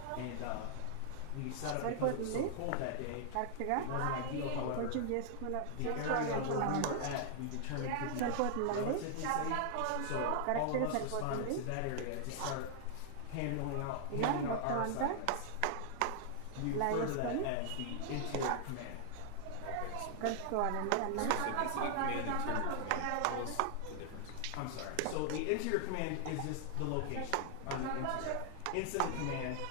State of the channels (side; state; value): both; different; correlation 0.00